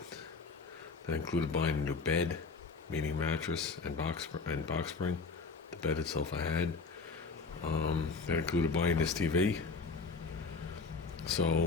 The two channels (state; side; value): quieter; right; 4.6 dB